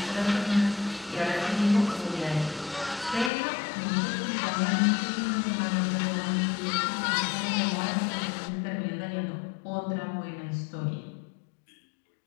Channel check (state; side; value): drops out; right; at 3.3 s